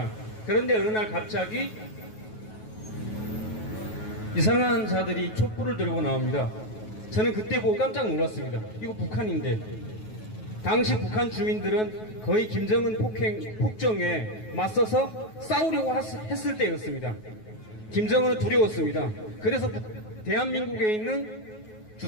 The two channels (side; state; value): right; late; 9.3 ms